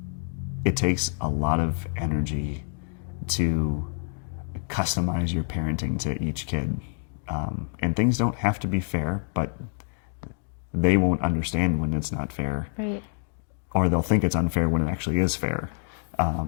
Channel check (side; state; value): right; silent; digital silence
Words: it takes a lot of energy to customize your parenting to each kid. And things don't have to be fair, but they won't understand when it's not fair. Right. Or they'll think it's unfair when it actually is fair.